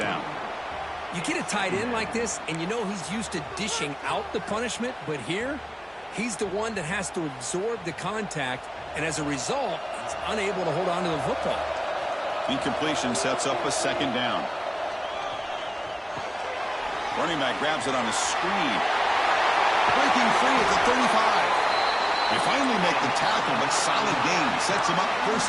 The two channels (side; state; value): both; identical; correlation 1.00